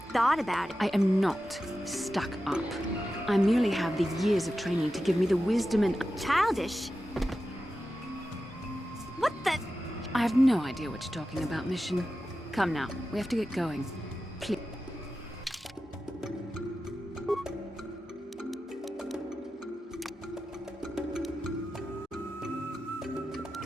thought about it. I am not stuck up. I merely have the years of training to give me the wisdom and... Childish? What the... I have no idea what you're talking about, Mission. Come now, we have to get going. Please.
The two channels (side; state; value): both; normal; correlation 0.92